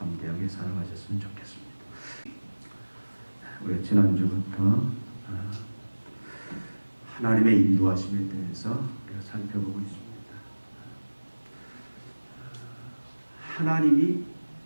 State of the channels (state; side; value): inverted; both; correlation -1.00